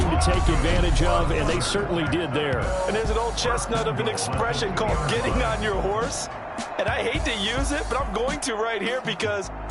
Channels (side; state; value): both; identical; correlation 1.00